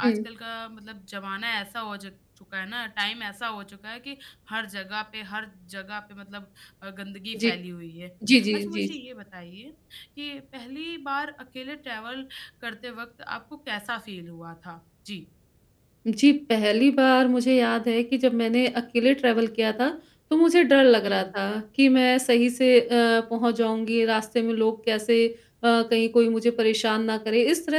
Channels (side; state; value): both; identical; correlation 1.00